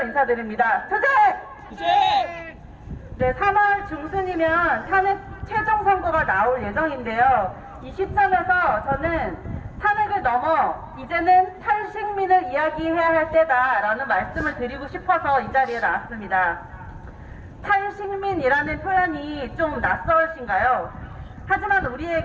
인사드립니다. 투쟁! 투쟁! 네, 3월 중순이면 탄핵 최종 선고가 나올 예정인데요. 이 시점에서 저는 탄핵을 넘어 이제는 탈식민을 이야기해야 할 때다라는 말씀을 드리고 싶어서 이 자리에 나왔습니다. 탈식민이라는 표현이 좀 낯설으신가요? 하지만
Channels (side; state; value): both; identical; correlation 1.00